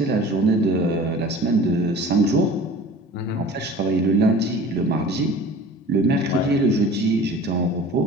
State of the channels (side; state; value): both; normal; correlation 0.42